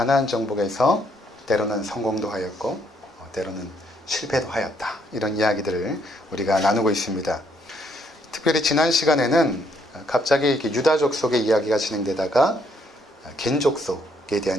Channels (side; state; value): both; normal; correlation 0.71